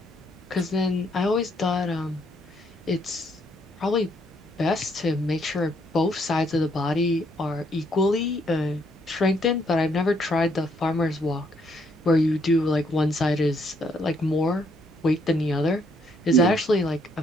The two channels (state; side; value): normal; both; correlation 0.71